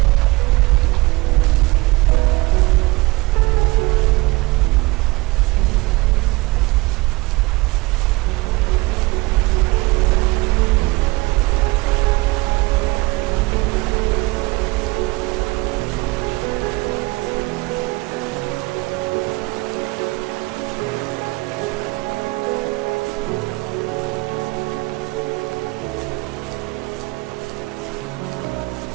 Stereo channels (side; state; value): left; quieter; 23.3 dB